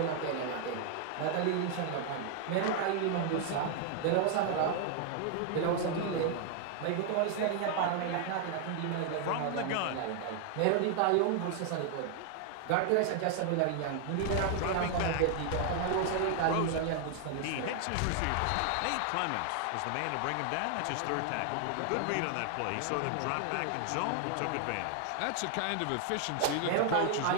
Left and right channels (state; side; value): different; both; correlation 0.00